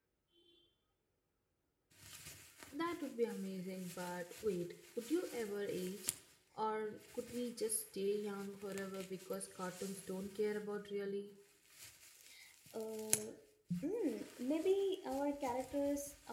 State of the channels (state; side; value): identical; both; correlation 1.00